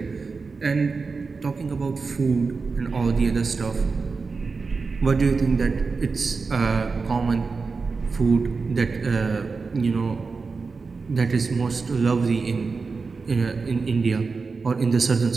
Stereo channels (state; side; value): quieter; left; 4.5 dB